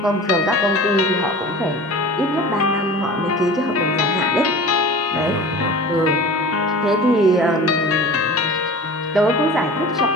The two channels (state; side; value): normal; both; correlation 0.38